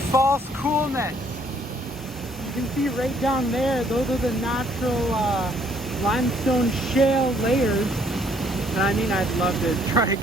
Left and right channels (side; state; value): both; normal; correlation 0.64